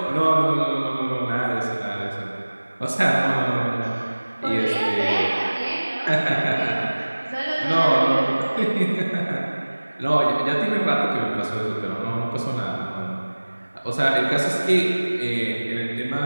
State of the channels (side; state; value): both; inverted; correlation -1.00